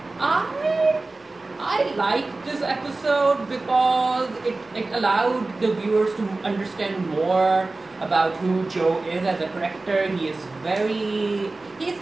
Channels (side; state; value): left; quieter; 3.3 dB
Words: I liked this episode because it allowed the viewers to understand more about who Joe is as a character. He's